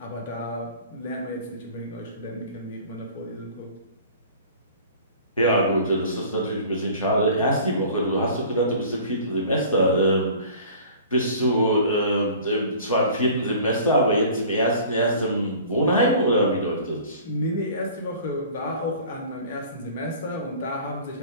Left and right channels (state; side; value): inverted; both; correlation -0.45